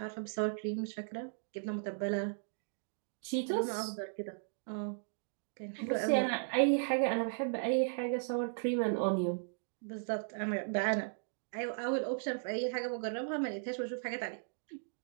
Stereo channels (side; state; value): left; silent; digital silence